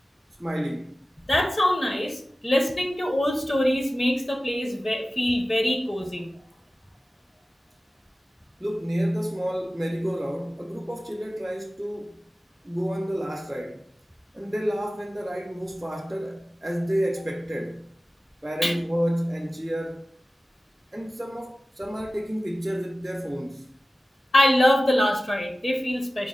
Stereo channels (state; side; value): normal; both; correlation 0.96